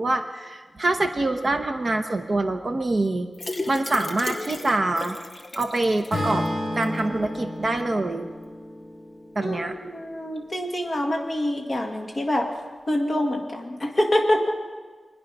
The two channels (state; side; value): normal; both; correlation 0.94